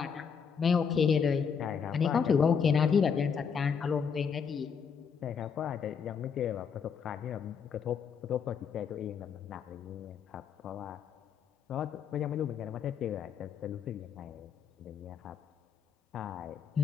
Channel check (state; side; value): quieter; right; 6.7 dB